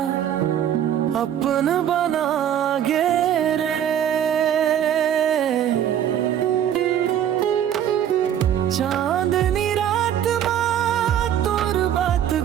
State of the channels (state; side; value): quieter; left; 10.1 dB